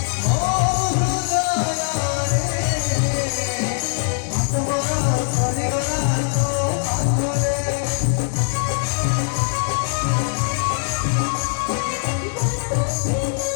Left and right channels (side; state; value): right; silent; 58 dB below the other